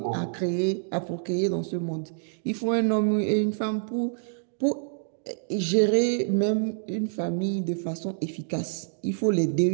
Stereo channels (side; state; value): left; silent; digital silence